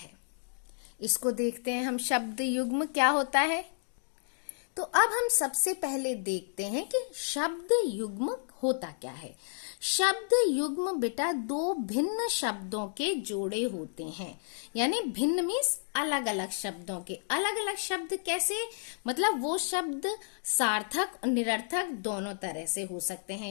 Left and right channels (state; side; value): silent; right; digital silence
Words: इसको देखते हैं हम। शब्द युग्म क्या होता है, तो अब हम सबसे पहले देखते हैं कि शब्द युग्म होता क्या है। शब्द युग्म बेटा दो भिन्न शब्दों के जोड़े होते हैं, यानी भिन्न मीन्स अलग अलग शब्दों के। अलग अलग शब्द कैसे? मतलब वो शब्द सार्थक और निरर्थक दोनों तरह से हो सकते हैं।